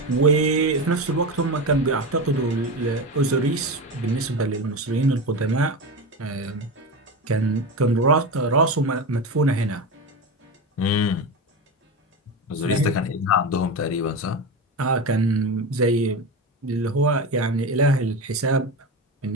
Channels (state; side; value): normal; both; correlation 0.21